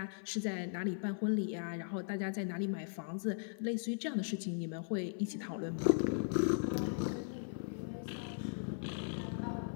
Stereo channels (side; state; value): right; silent; 52 dB below the other